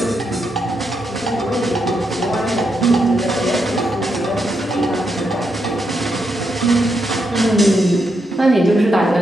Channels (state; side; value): normal; both; correlation 0.81